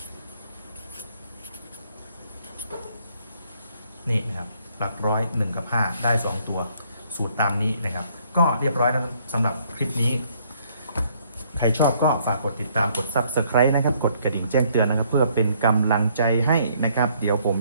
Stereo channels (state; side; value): inverted; both; correlation -0.66